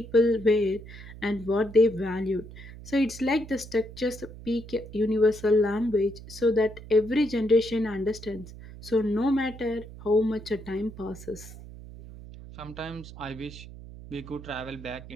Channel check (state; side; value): noise; right; hum, 15 dB below the sound